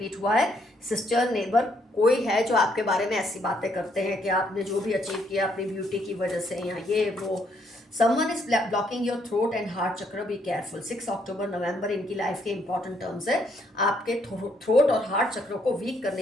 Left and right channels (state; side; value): normal; both; correlation 0.71